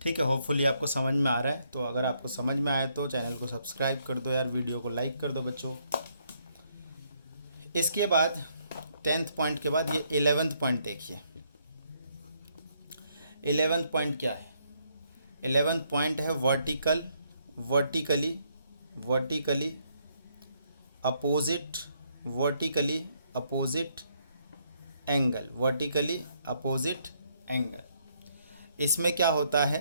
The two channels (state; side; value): inverted; both; correlation -0.72